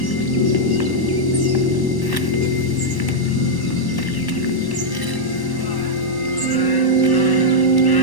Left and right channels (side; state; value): right; late; 1.1 ms